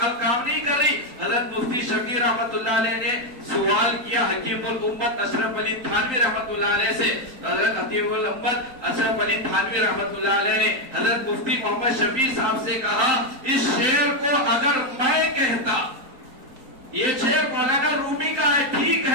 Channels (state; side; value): late; left; 3.8 ms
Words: کام نہیں کر رہی. حضرت مفتی شفیع رحمت اللہ علیہ نے سوال کیا حکیم الامت اشرف علی تھانوی رحمت اللہ علیہ سے. حضرت حکیم الامت اشرف علی تھانوی رحمت اللہ علیہ نے حضرت مفتی محمد شفیع صاحب سے کہا اس شعر کو اگر میں کہتا، یہ شعر مولانا رومی کا ہے ٹھیک